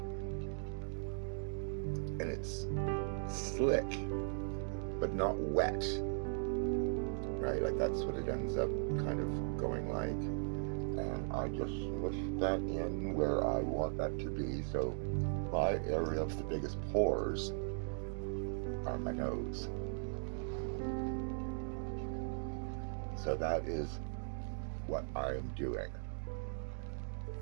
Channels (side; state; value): left; silent; digital silence